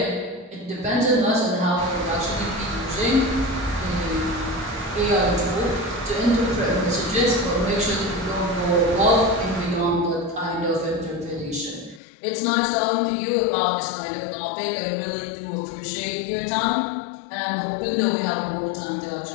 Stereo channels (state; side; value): drops out; right; at 12.0 s